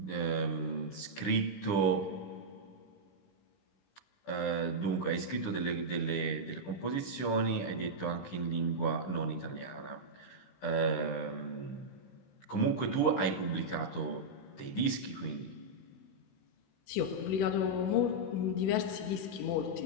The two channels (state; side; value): late; right; 15 ms